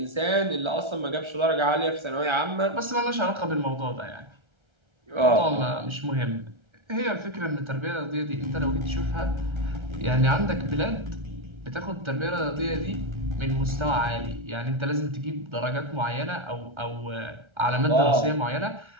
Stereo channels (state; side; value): late; left; 1.3 ms